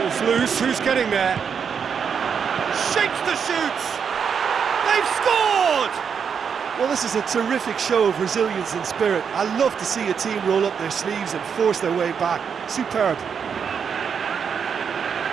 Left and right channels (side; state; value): left; quieter; 6.8 dB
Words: Loose, who's getting there? Shakes the shoots! They've scored! Well, this is a terrific show of resilience and spirit. I love to see a team roll up their sleeves and force their way back. Superb.